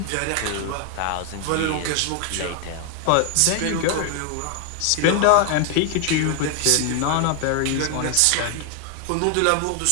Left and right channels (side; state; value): both; different; correlation 0.00